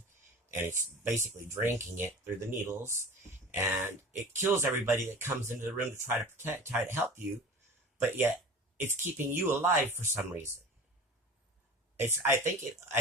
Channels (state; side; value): normal; both; correlation 0.37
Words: and it's basically drinking it through the needles, and it kills everybody that comes into the room to try to help you, but yet it's keeping you alive for some reason. I